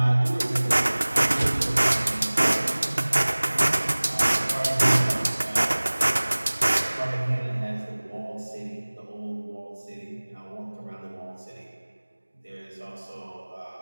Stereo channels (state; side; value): inverted; both; correlation -1.00